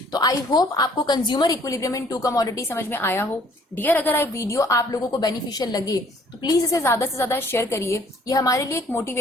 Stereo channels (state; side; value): normal; both; correlation 0.59